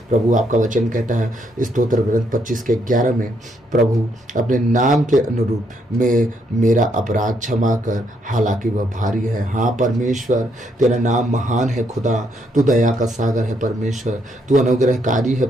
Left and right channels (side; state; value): both; normal; correlation 0.74